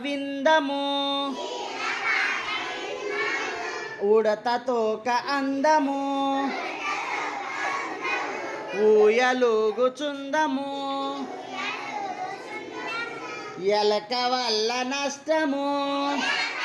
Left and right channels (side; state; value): both; identical; correlation 1.00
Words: విందము, ఉడత తోక అందము, ఊయలుగుచుందము, ఎలక వల్ల నష్టము,